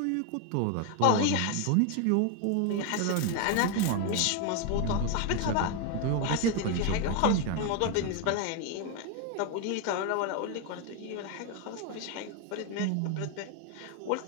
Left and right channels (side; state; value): both; different; correlation 0.01